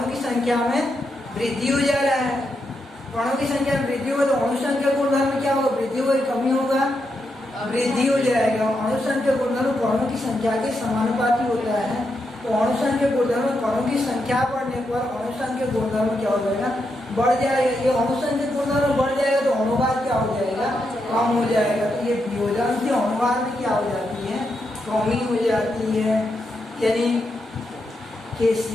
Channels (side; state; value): both; normal; correlation 0.83